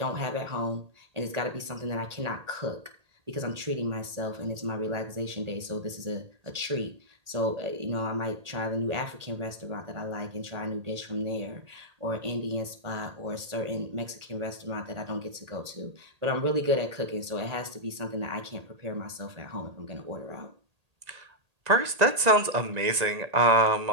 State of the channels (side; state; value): left; late; 1.8 ms